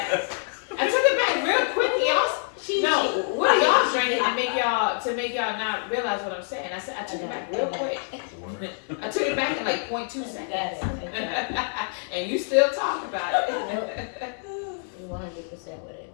I took it back real quick, y'all. No, what are y'all drinking to make y'all not realize what I'm saying? I said I took it back real quick. I took it back in like 0.2 seconds. And you still talk about it. 100% with it.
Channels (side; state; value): right; silent; 61 dB below the other